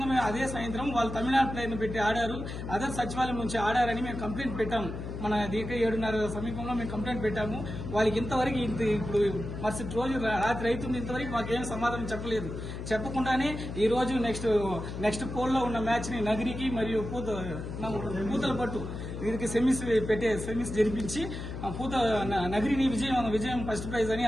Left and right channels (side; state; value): left; noise; hum, 7 dB below the sound